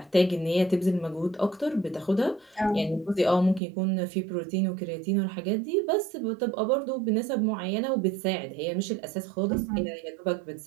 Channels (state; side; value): drops out; left; at 3.6 s